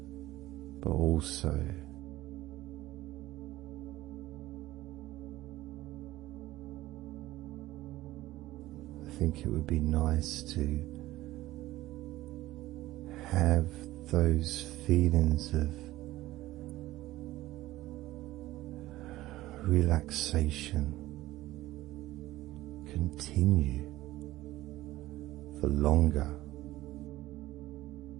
but also I think it would be nice to have those feelings of relaxation continue for longer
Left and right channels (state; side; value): quieter; left; 16.6 dB